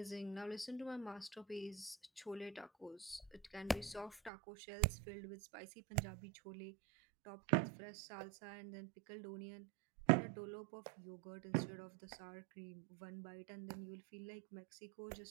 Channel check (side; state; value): left; drops out; at 4.3 s